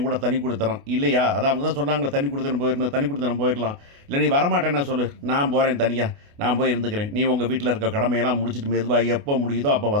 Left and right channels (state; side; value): late; left; 28 ms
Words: கூட தனி குடித்தனம். இல்லையா? அதான் அவங்க தான் சொன்னாங்களே தனி குடித்தனம் போயிரணும், தனி குடித்தனம் போயிரலாம். இல்ல நீ வரமாட்டேன்னா சொல்லு. நான் போறேன் தனியா. நான் போய் இருந்துக்கிறேன். நீ உங்க வீட்ல இருக்க கடமையெல்லாம் முடிச்சுட்டு மெதுவா எப்போ முடியுதோ அப்போ